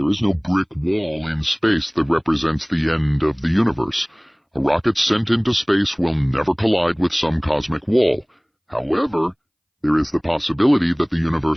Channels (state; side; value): identical; both; correlation 1.00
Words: is no brick wall in space that represents the end of the universe. A rocket sent into space will never collide with some cosmic wall. However, there is the possibility that the